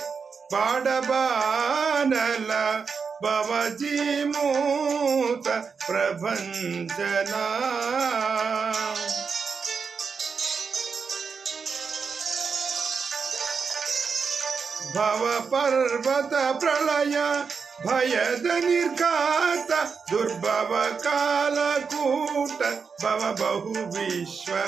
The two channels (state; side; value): quieter; left; 5.6 dB